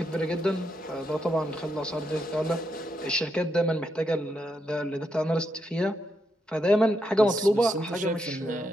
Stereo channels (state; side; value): normal; both; correlation 0.81